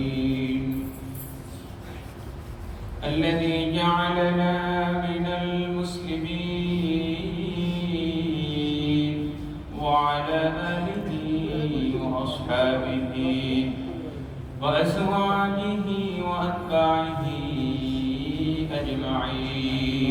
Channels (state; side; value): identical; both; correlation 1.00